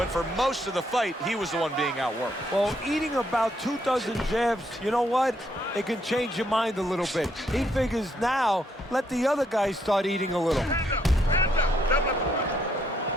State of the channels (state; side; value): normal; both; correlation 0.73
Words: for most of the fight, he was the one being outworked. Well, eating about 2 dozen jabs, you know what? It can change your mind a little bit. He figures now, let the other guy start eating a little. Hands up, hands up.